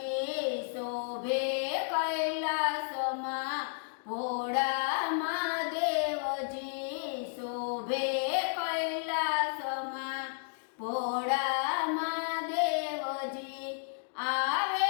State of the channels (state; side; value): silent; right; digital silence